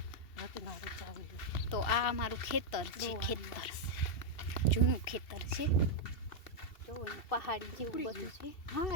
તો આ અમારું ખેતર છે. ખેતર જૂનું ખેતર છે. જો પહાડી જેવું બધું છે. હા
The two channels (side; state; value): right; late; 2.7 ms